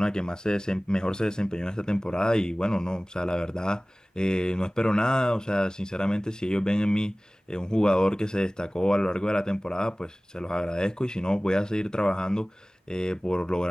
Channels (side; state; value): both; normal; correlation 0.98